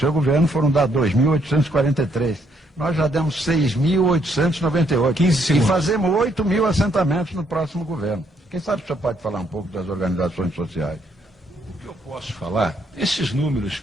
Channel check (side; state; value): both; normal; correlation 0.71